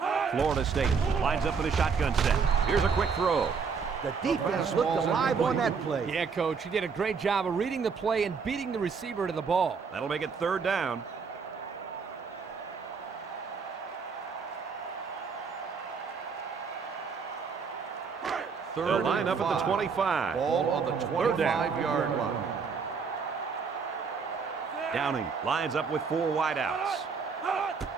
Florida State lines up in a shotgun set. Here's a quick throw. The defense looked alive on that play. Yeah, Coach, he did a great job of reading the play and beating the receiver to the ball. That'll make it 3rd down. They'll line up at the 25. Ball on the 25-yard line. Downing lines up with 4 wideouts.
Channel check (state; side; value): quieter; left; 5.6 dB